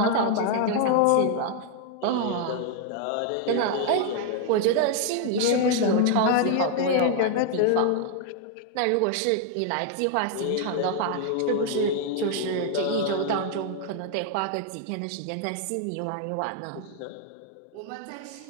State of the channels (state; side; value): different; both; correlation 0.00